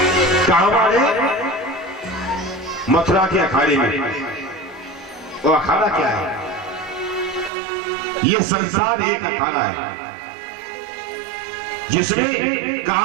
कहां मारे? मथुरा के अखाड़े में। वो अखाड़ा क्या है? ये संसार एक अखाड़ा है जिसमें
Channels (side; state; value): left; drops out; at 7.5 s